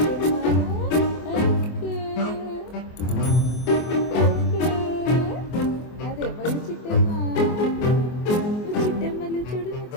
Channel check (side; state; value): right; late; 24 ms